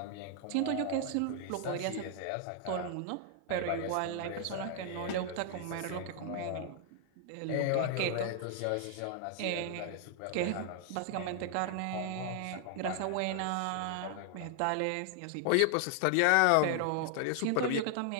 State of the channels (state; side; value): different; both; correlation 0.00